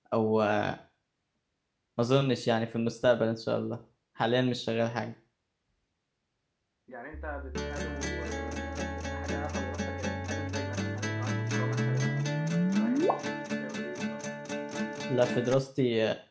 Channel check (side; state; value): both; identical; correlation 1.00